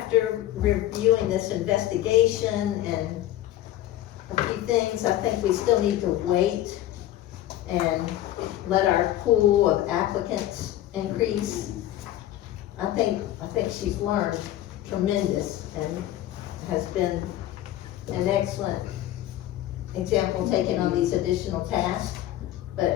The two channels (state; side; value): quieter; right; 13.5 dB